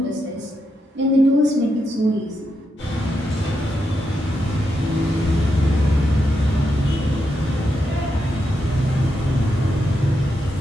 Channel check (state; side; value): normal; both; correlation 0.84